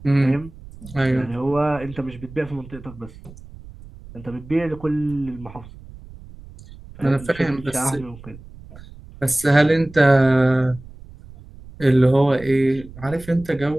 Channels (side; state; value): right; noise; rumble, 18 dB below the sound